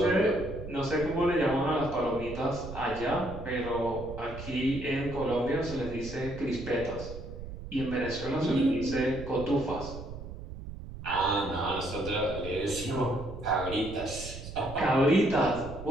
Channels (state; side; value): noise; right; rumble, 11 dB below the sound